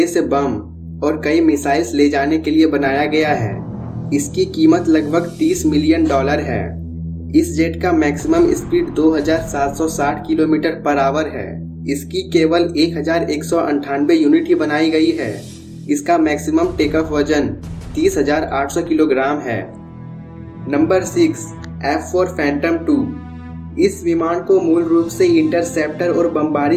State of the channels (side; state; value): both; identical; correlation 1.00